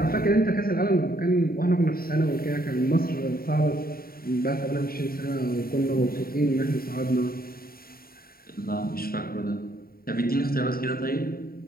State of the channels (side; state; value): right; late; 0.43 ms